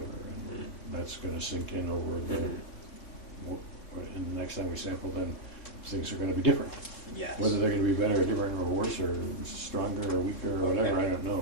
and that's going to sink in over and the next time we sample, then things are going to be different. Yes. Whether they're going to be better or different or worse or stronger or weaker or whatever, Okay. I don't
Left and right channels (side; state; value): right; late; 3.7 ms